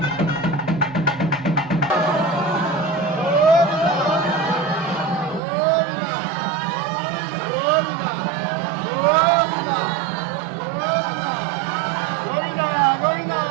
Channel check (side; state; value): left; drops out; at 5.4 s